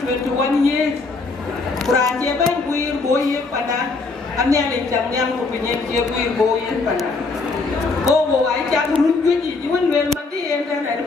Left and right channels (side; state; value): right; quieter; 3.9 dB